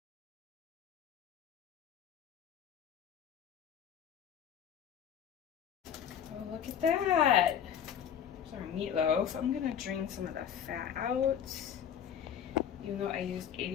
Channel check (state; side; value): quieter; right; 8.9 dB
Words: Oh, look at that. There's our meatloaf. I'm gonna drain some of the fat out, even though I used